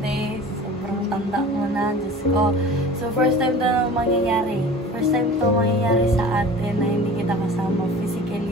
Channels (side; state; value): both; normal; correlation 0.41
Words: Sobrang tanda mo na. Diyos ko. So, first time to mangyayari. First time to mangyayari sa atin na hindi kita kasama